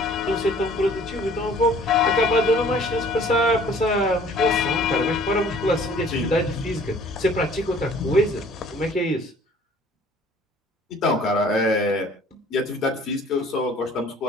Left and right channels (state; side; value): normal; both; correlation 0.53